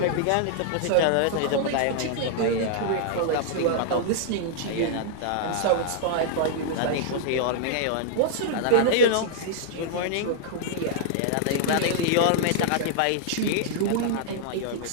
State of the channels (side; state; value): both; different; correlation -0.01